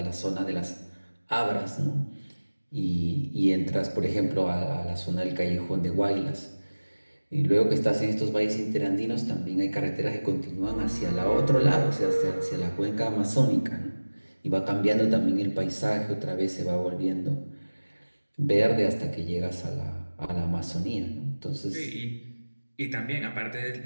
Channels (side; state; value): both; inverted; correlation -1.00